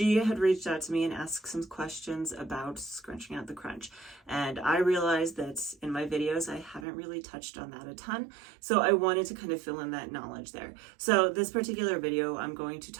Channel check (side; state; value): left; drops out; at 6.9 s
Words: had reached out to me and asked some questions about scrunching out the crunch. And I realized that in my videos, I haven't really touched on that a ton. So I wanted to kind of fill in that knowledge there. So this particular video, I'm going to